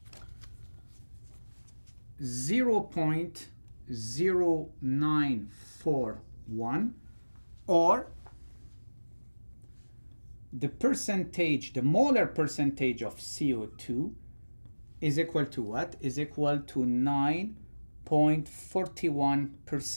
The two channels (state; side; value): inverted; both; correlation -1.00